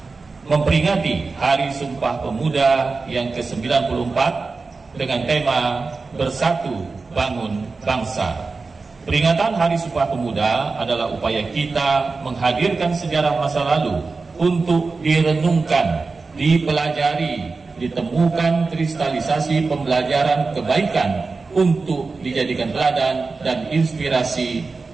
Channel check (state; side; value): quieter; left; 4.1 dB